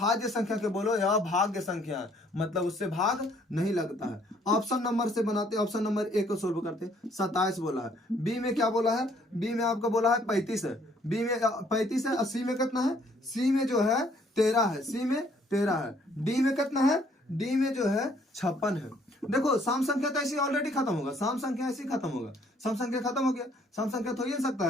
संख्या के बोलो यह भाग्य संख्या है, मतलब उससे भाग नहीं लगता है। ऑप्शन नंबर से बनाते, ऑप्शन नंबर ए को सोल्व करते। 27 बोला है। बी में क्या बोला है? बी में आपको बोला है 35 है। बी में 35 है और सी में कितना है? सी में जो है 13 है। सी में 13 है। डी में कितना है? डी में जो है 56 है। देखो सम संख्या तो ऐसी ऑलरेडी खत्म होगा, सम संख्या ऐसी खत्म होगा, सम संख्या खत्म हो गया, सम संख्या तो हो ही नहीं सकता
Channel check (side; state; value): both; normal; correlation 0.63